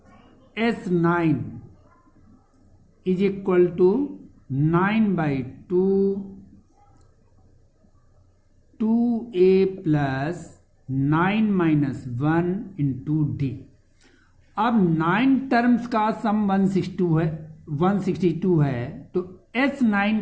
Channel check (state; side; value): identical; both; correlation 1.00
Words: S9 is equal to 9/2 2a plus 9-1 into D. अब 9 टर्म्स का सम 162 है, तो